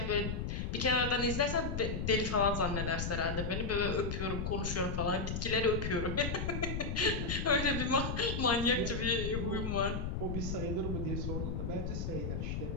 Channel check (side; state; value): left; noise; rumble, 2 dB below the sound